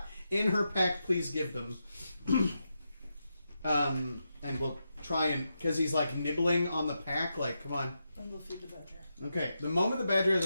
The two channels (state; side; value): inverted; both; correlation -0.86